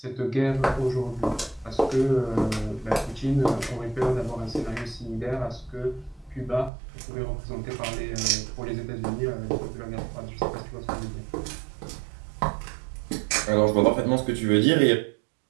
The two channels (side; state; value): left; drops out; at 6.7 s